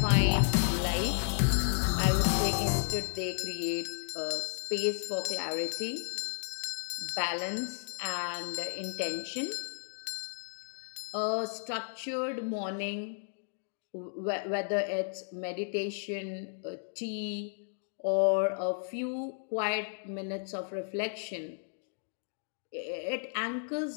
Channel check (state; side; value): silent; right; digital silence